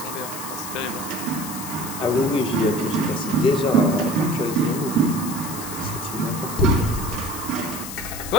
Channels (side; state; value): left; noise; hiss, 9 dB below the sound